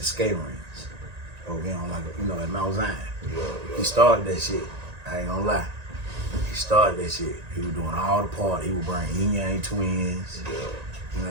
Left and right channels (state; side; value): late; left; 1.9 ms